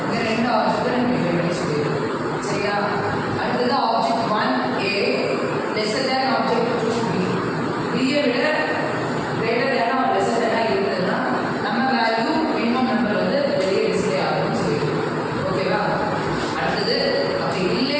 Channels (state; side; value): identical; both; correlation 1.00